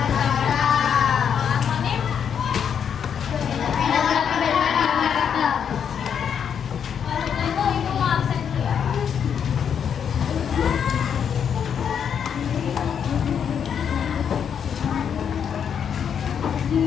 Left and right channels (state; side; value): quieter; right; 7.8 dB